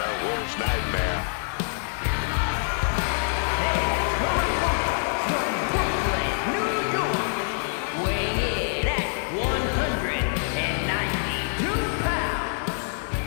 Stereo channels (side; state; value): right; silent; 61 dB below the other